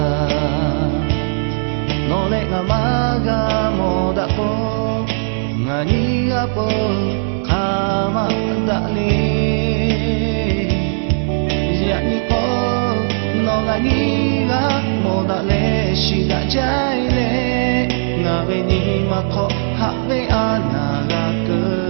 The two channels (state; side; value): silent; left; digital silence